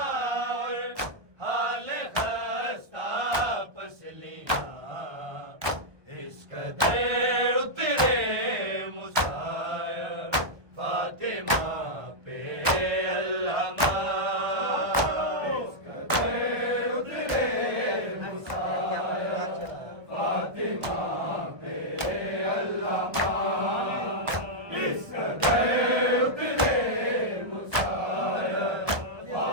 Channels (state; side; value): late; left; 1.1 ms